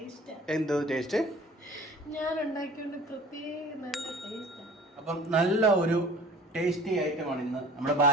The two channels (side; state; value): both; normal; correlation 0.46